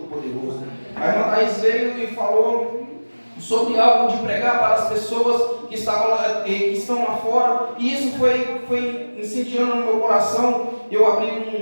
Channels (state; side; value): inverted; both; correlation -1.00